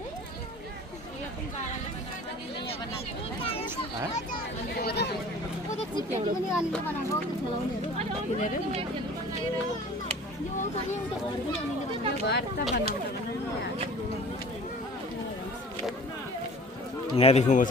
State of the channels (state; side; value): normal; both; correlation 0.45